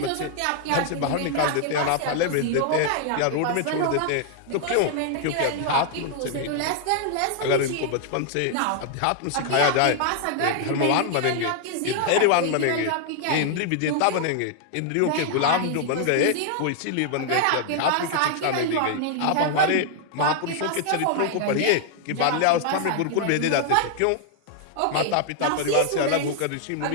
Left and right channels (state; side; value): different; both; correlation 0.00